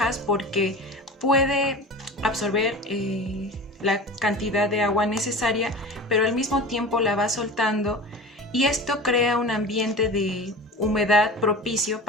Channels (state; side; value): normal; both; correlation 0.34